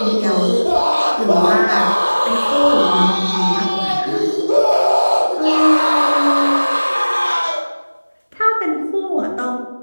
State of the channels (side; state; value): both; inverted; correlation -1.00